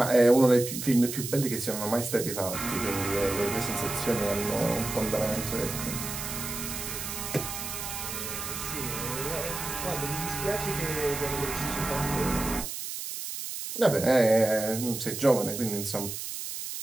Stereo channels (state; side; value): noise; right; hiss, 6 dB below the sound